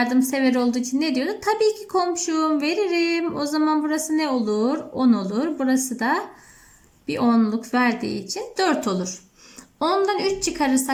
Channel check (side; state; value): both; identical; correlation 1.00